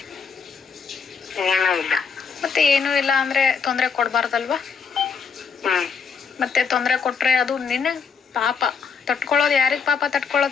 ಮತ್ತೆ ಏನೂ ಇಲ್ಲ ಅಂದ್ರೆ ತೊಂದರೆ ಕೊಡಬಾರ್ದಲ್ವಾ? ಮತ್ತೆ ತೊಂದರೆ ಕೊಟ್ರೆ ಅದು ನಿನಗೆ ಪಾಪ. ತಟ್ಕೊಳ್ಳೋದು ಯಾರಿಗೆ ಪಾಪ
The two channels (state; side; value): quieter; right; 5.9 dB